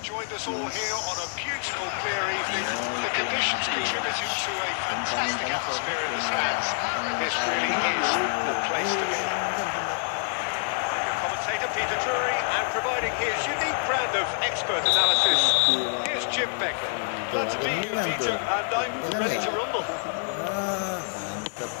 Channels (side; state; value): right; silent; 60 dB below the other